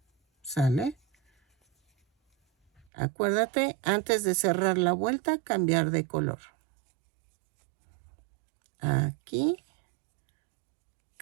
¿Sale? Acuérdate, antes de cerrar la vuelta, cambiar de color. Aquí,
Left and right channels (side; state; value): left; drops out; at 2.9 s